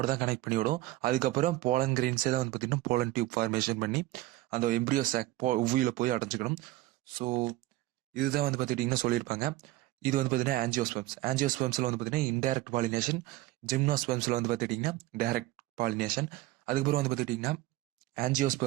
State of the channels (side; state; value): left; quieter; 17.3 dB